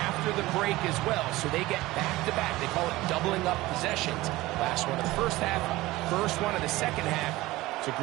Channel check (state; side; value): quieter; left; 18.7 dB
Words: the break as well, so they get back-to-back. They call it doubling up possessions. Last one of the first half, first one of the second half. It's a